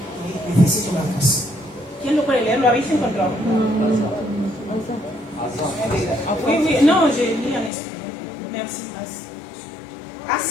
Necesito una cosa. ¿Quién lo puede leer? ¿Lo habéis encontrado? Oui, oui, non, je lis en espagnol. Merci.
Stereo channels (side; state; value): right; drops out; at 7.7 s